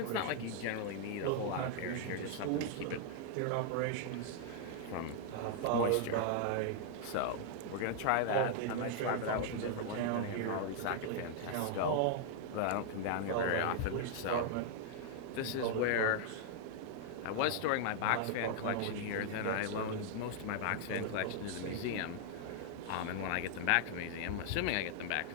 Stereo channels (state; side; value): different; both; correlation 0.00